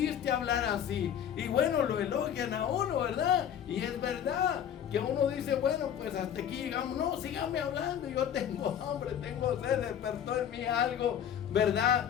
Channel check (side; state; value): right; quieter; 9.3 dB